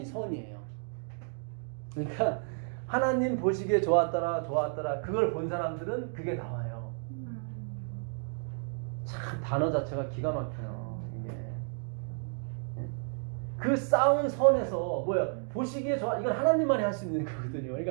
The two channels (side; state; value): left; silent; 57 dB below the other